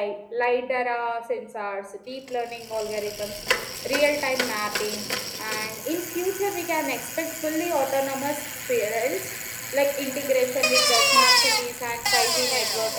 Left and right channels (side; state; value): both; identical; correlation 1.00